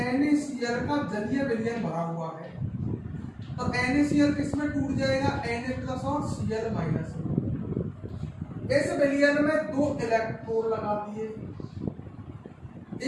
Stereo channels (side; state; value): both; identical; correlation 1.00